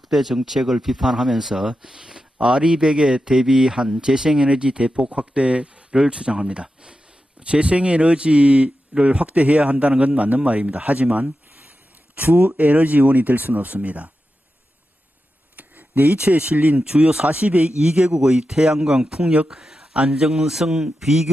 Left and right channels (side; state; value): both; normal; correlation 0.90